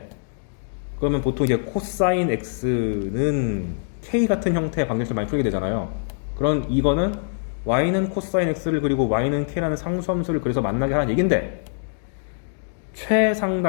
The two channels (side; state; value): right; silent; digital silence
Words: 그러면 보통 이제 코사인 x는 k 같은 형태의 방정식을 많이 풀게 되잖아요. 그런 이거는 y는 코사인 x를 그리고 y는 k라는 상수함수를 그래서 만나게 하는 얘긴데,